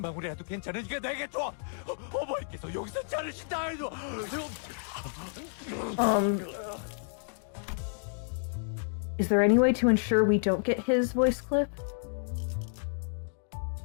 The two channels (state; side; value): silent; right; digital silence